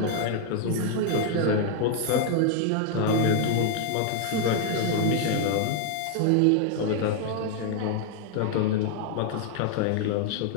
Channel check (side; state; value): both; different; correlation 0.00